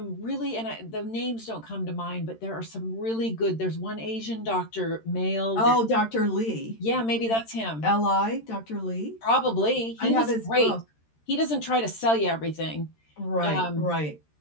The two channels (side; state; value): right; late; 13 ms